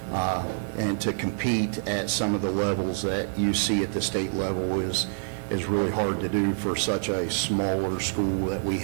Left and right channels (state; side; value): silent; left; 60 dB below the other